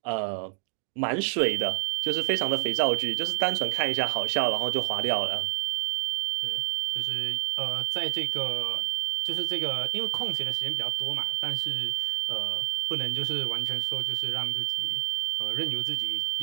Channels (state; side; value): silent; left; 59 dB below the other